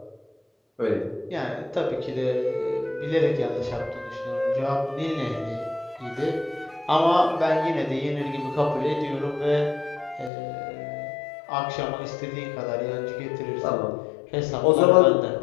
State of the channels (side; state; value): right; drops out; at 10.3 s